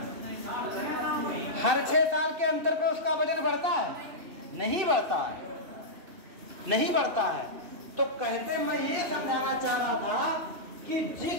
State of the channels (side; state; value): left; late; 2.6 ms